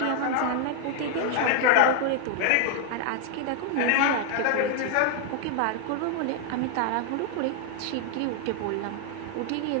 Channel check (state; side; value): different; both; correlation 0.00